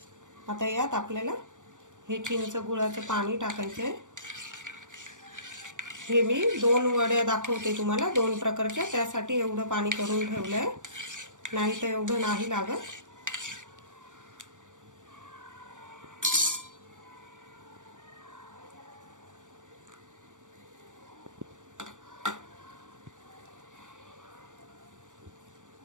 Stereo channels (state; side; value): late; left; 0.86 ms